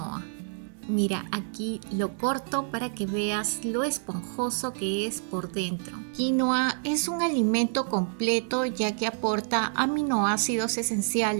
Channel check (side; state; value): left; silent; 58 dB below the other